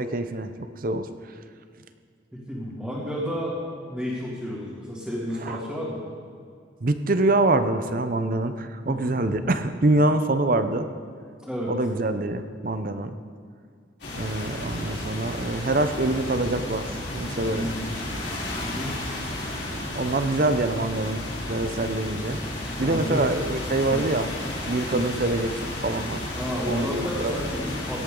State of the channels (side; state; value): both; normal; correlation 0.36